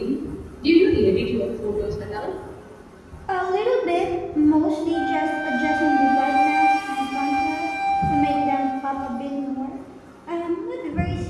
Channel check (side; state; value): both; identical; correlation 1.00